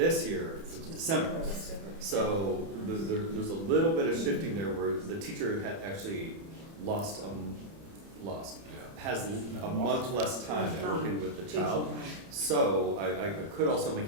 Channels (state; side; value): late; left; 30 ms